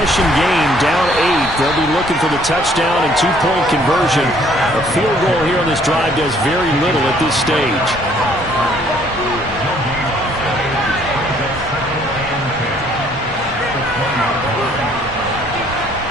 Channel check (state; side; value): normal; both; correlation 0.62